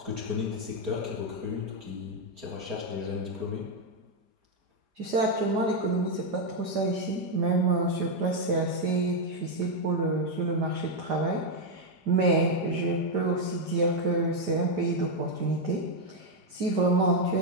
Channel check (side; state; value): left; late; 5.0 ms